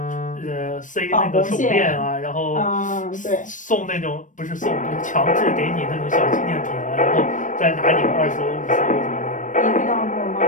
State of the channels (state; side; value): late; right; 0.37 ms